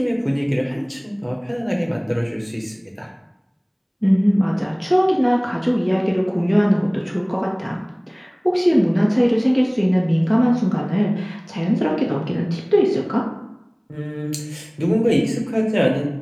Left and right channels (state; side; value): identical; both; correlation 1.00